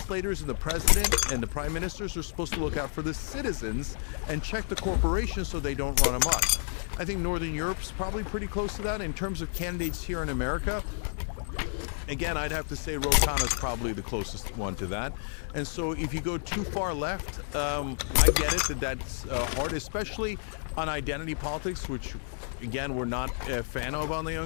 and the president and the prime ministers are supposed to look out for the citizens and check the corporations so they don't run amok. I think Northern Europe's probably pretty close to that. In terms of candidates here in America, again, I'd have to say Ro Khanna's probably the closest one to that. And so if you go too far left, I get it that's hard, especially on identity politics, which again, we're not a fan of on the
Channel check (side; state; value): right; silent; 58 dB below the other